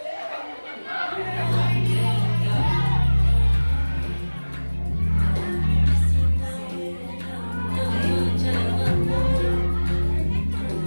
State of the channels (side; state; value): both; inverted; correlation -1.00